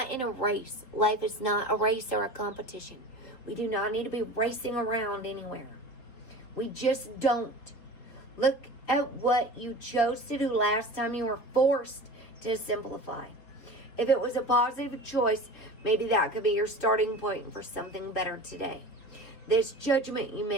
in a race. Life is not a race or a competition. We do not need to be racing around anywhere. We just don't. Look at what you chose to do last time you were forced to simplify. If it was a positive choice, maybe that could be your starting point for something better today. This judgment you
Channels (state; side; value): late; right; 4.4 ms